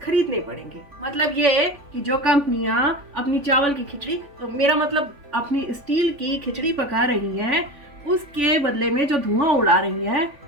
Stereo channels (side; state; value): left; late; 3.5 ms